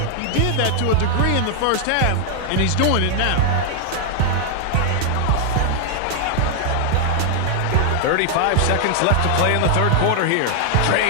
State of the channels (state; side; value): different; both; correlation 0.00